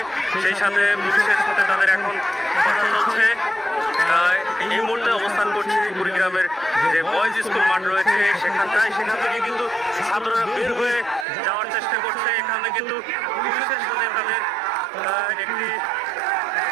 সেই সাথে পুলিশের সাথে তাদের এখন কথা চলছে। এই মুহূর্তে অবস্থান করছি কুড়িগ্রামের যে বয়েজ স্কুল মাঠ রয়েছে সেখান থেকে কিন্তু ছাত্ররা বের হয়ে যাওয়ার চেষ্টা করছে। এখানে কিন্তু পুলিশের সাথে তাদের একটি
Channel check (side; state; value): left; drops out; at 11.2 s